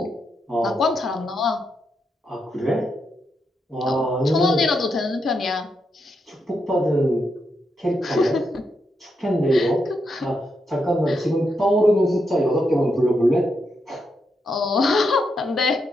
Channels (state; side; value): normal; both; correlation 0.82